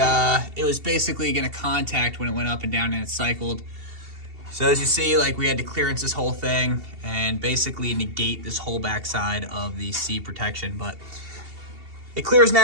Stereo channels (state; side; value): late; left; 2.7 ms